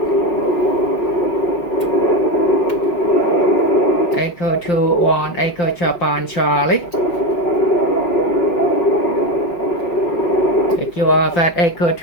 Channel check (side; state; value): right; late; 5.8 ms